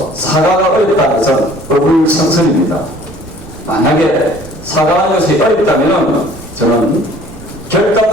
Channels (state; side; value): noise; right; rumble, 18 dB below the sound